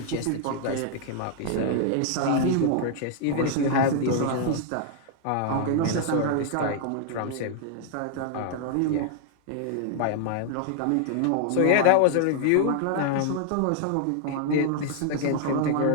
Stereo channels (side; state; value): both; different; correlation 0.00